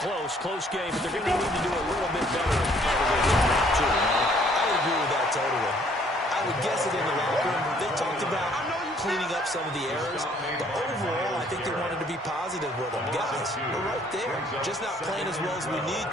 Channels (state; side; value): normal; both; correlation 0.62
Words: game, but they're going to need to do a little bit better. I would agree with that totally. I would guess it in the locker room. They talked about cleaning up some of the errors, but overall, I think they wanted to be positive with them. Guys, we're right there. just not playing as well as we need